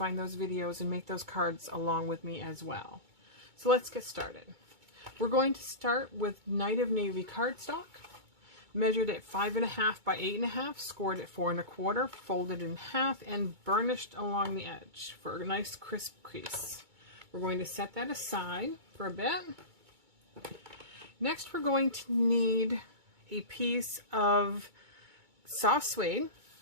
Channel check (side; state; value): left; late; 2.2 ms